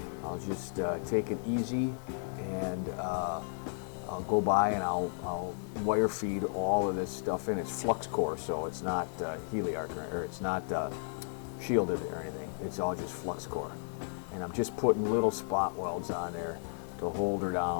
I'll just take it easy, and I'll go by and I'll wire feed all of this stuff in. It's flux core, so it's not heliarc, or it's not shielded or anything. It's all just flux core. And I'm just putting little spot welds on there to hold her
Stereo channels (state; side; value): silent; right; 55 dB below the other